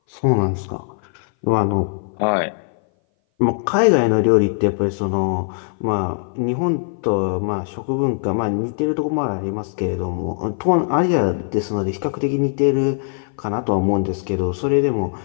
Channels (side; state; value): right; silent; 58 dB below the other